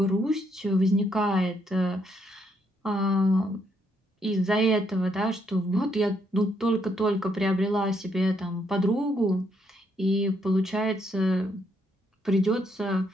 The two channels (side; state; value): both; normal; correlation 0.74